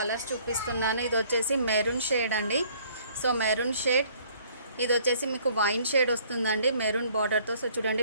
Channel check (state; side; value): inverted; both; correlation -0.59